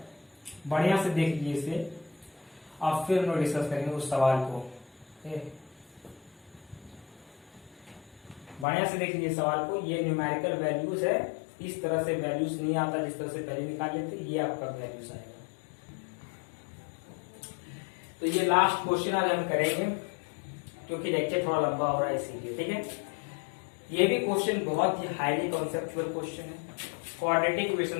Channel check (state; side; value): drops out; right; at 8.7 s